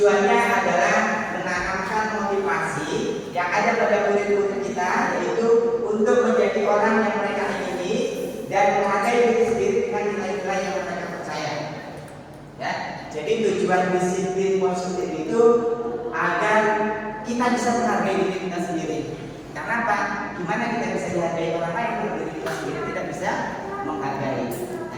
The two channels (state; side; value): identical; both; correlation 1.00